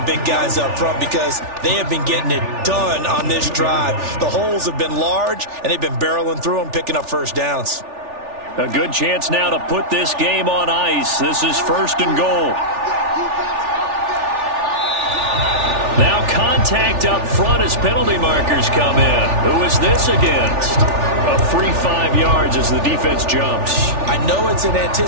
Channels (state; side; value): late; left; 3.4 ms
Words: big guys up front because they have been getting it done on this drive. The holes have been large, and they've been barreling through them, picking up first downs. A good chance now to put this game on ice. This is first and goal. Now contact up front as penalty markers come in. Who is this against? A free 5 yards as the defense jumps. I know it's an